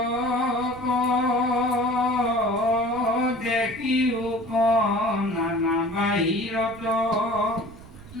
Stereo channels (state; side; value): noise; right; rumble, 18 dB below the sound